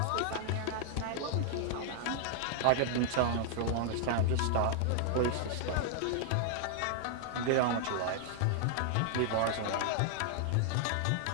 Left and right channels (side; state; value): both; different; correlation -0.01